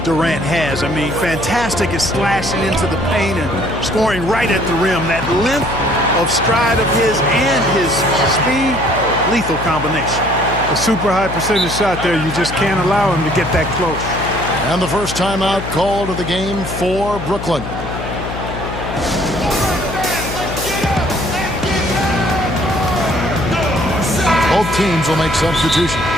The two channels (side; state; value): left; noise; hum, 8 dB below the sound